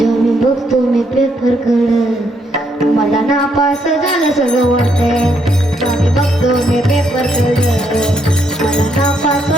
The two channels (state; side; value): normal; both; correlation 0.74